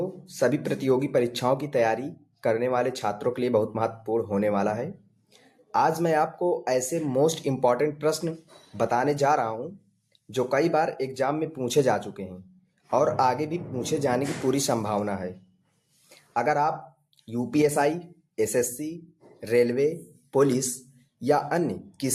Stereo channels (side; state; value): both; identical; correlation 1.00